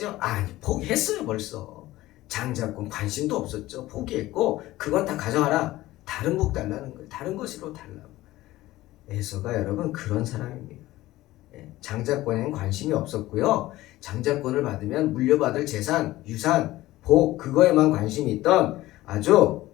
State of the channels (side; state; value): right; quieter; 16.9 dB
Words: 아니, 포기했어요 벌써. 장자권 관심도 없었죠. 포기했고 그건 다 가져가라. 다른 복 달라는 거예요. 다른 것으로 달라고. 에서가 여러분 그런 사람입니다. 장자권에는 관심이 없었고요. 장자권을 받으면 물려받을 재산, 유산, 복 그거에만 관심이 있던 아주